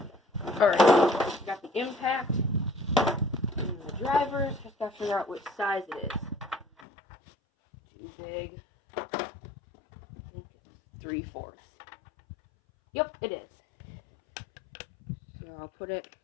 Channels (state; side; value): drops out; right; at 6.7 s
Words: Alright, got the impact and the drivers. Just gotta figure out which size it is. Too big. I think it's 3/4. Yep, it is. So I'll put it